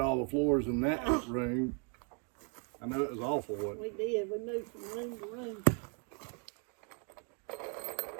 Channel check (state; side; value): quieter; left; 38.6 dB